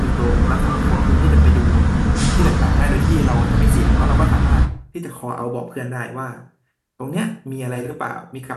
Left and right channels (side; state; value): both; identical; correlation 1.00